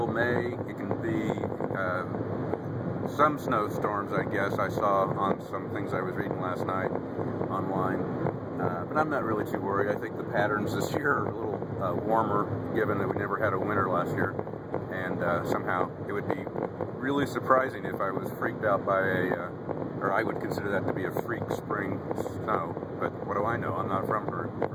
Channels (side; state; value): both; identical; correlation 1.00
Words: May. It can be some snowstorms, I guess. I saw on some things I was reading last night online, but I'm not really too worried. I think the patterns this year are a little warmer, given that we never had a winter last year, and somehow it would be really surprising if I was freaked out by or I would consider that to be a freak spring snow, but what do I know? I'm not from